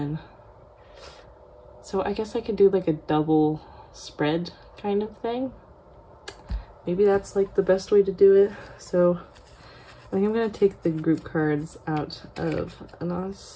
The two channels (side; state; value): both; identical; correlation 1.00